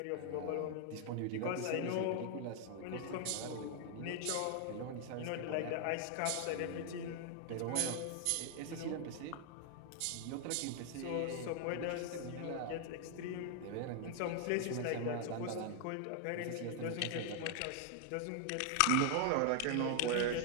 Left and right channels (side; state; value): both; different; correlation 0.00